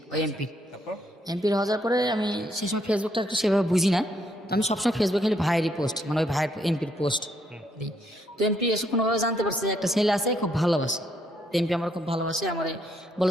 ওই এমপির। তারপর? এমপির হওয়ার পরে আমি সেই সময় ফেসবুকটা একটু সেভাবে বুঝি না, তো আমি সবসময় ফেসবুকে খালি ভাইয়েরই পোস্ট, মানে ওই ভাইয়ের এমপির পোস্ট দিই। তো এমপি এসে কোনোভাবে জানতে পারছে যে একটা ছেলে আছে খুব ভালোবাসে, তো এমপি আমার খুব ভালোবাসে, আমারে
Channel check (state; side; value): normal; both; correlation 0.73